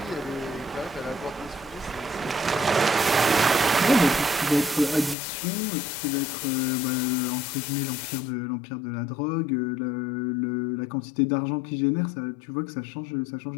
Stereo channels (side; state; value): right; drops out; at 5.2 s